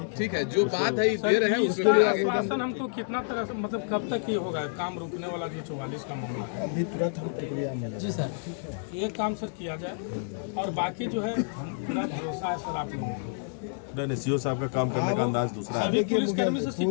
ठीक है, जो बात है दे रहे हैं उसके लिए आश्वासन हमको कितना तरह से, मतलब कब तक ये होगा काम रुकने वाला जो 44 का मामला है? अभी तुरंत हम प्रक्रिया में। जी सर, ये काम सर किया जाए, और बाकी जो है हम पूरा भरोसा है सर आप लोगों को। नहीं, सीओ साहब का काम करने का अंदाज दूसरा है। अभी पुलिसकर्मी से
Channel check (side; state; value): right; silent; digital silence